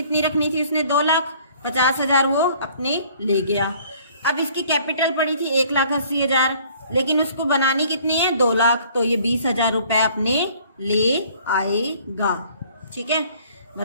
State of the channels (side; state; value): both; inverted; correlation -0.56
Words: रखनी थी उसने, 2,50,000 वो अपने ले गया। अब इसकी कैपिटल पड़ी थी 1,80,000, लेकिन उसको बनानी कितनी है, 2 लाख, तो ये 20,000 रुपए अपने ले आएगा। ठीक है,